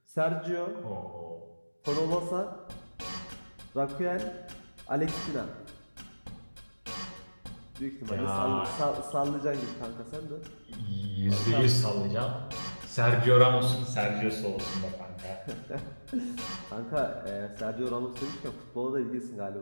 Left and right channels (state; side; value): inverted; both; correlation -1.00